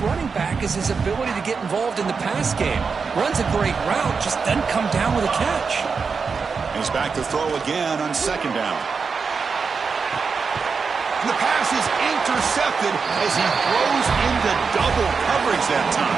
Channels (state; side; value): quieter; left; 5.2 dB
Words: back is his ability to get involved in the pass game. Runs a great route, just doesn't come down with a catch. He's back to throw again on second down. And the pass is intercepted as he throws into double coverage that